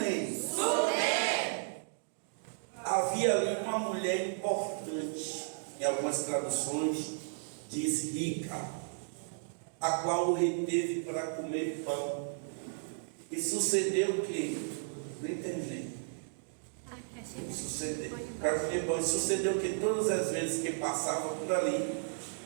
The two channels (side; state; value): left; silent; digital silence